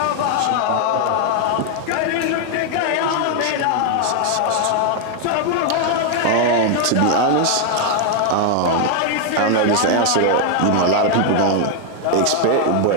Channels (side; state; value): both; different; correlation 0.00